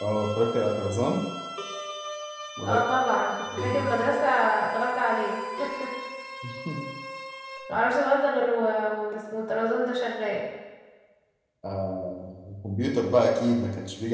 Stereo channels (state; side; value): identical; both; correlation 1.00